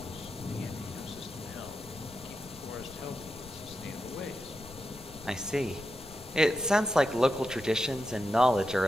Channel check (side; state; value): left; noise; rumble, 18 dB below the sound